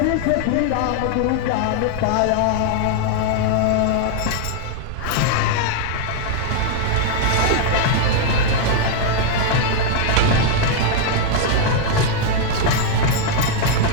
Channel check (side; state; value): both; different; correlation 0.00